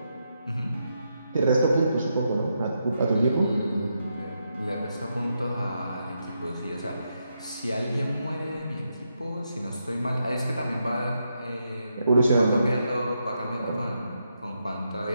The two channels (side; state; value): both; inverted; correlation -0.82